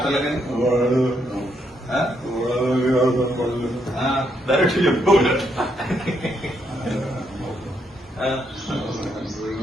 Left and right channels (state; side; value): normal; both; correlation 0.77